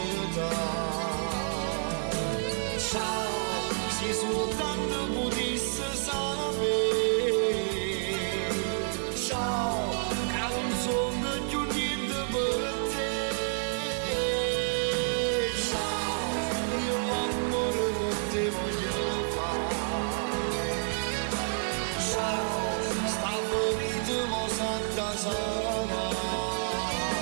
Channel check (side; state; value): left; silent; 58 dB below the other